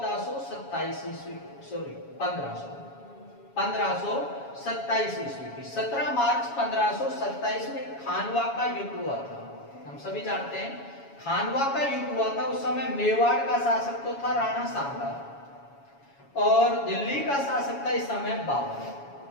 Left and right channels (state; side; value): late; right; 7.2 ms